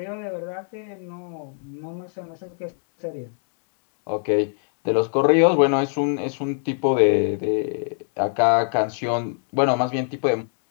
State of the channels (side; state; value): right; silent; digital silence